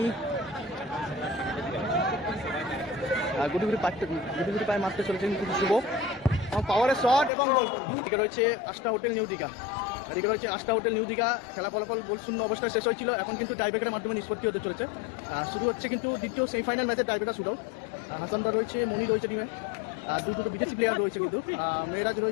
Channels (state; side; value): drops out; right; at 7.3 s